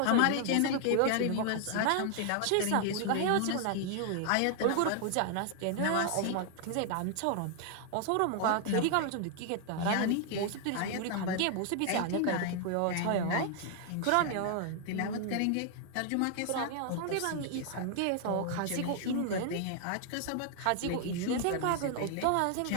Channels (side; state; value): both; different; correlation 0.00